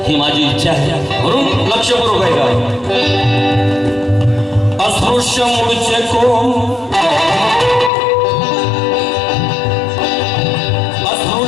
ही माझी इच्छा आहे. म्हणून लक्षपूर्वक आहे का. अस्पृश्य मूळचे कोण,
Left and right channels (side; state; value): right; drops out; at 7.9 s